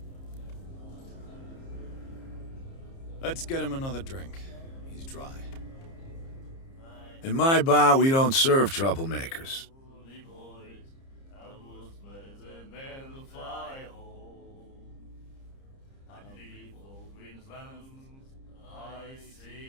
Let's get him another drink. He's dry. In my bar, we don't serve troublemakers.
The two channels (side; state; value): right; late; 30 ms